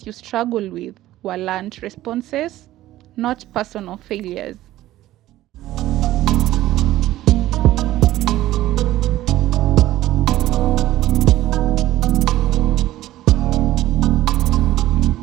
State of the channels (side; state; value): left; quieter; 15.0 dB